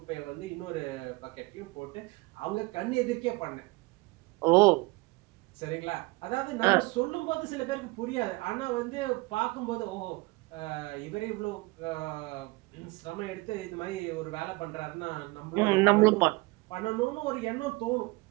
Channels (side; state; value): left; quieter; 23.5 dB